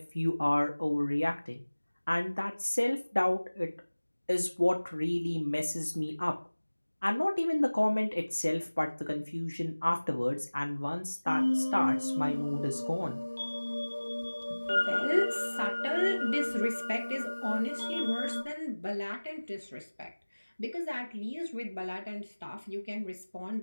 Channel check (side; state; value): both; inverted; correlation -1.00